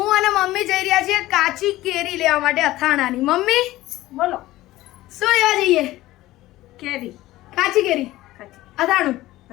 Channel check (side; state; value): right; quieter; 16.7 dB